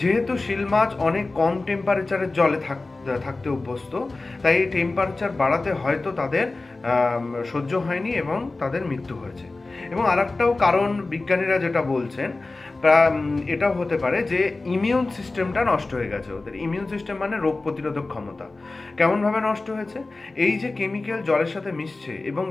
শিল মাছ অনেক কম টেম্পারেচারের জলে থাকতে অভ্যস্ত, তাই এই টেম্পারেচার বাড়াতে হয়তো তাদের সহ্য হয়নি এবং তাদের মৃত্যু হয়েছে। এবং আরেকটাও কারণ বিজ্ঞানীরা যেটা বলছেন, এটাও হতে পারে যে ইমিউন সিস্টেমটা নষ্ট হয়ে গেছে ওদের। ইমিউন সিস্টেম মানে রোগ প্রতিরোধক ক্ষমতা। কেমনভাবে নষ্ট হয়েছে? এই যে কেমিক্যাল জলের সাথে মিশছে এবং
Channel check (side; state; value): right; quieter; 3.3 dB